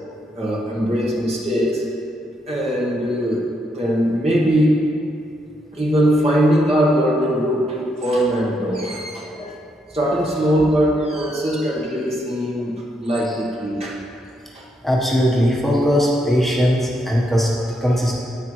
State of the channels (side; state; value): both; normal; correlation 0.78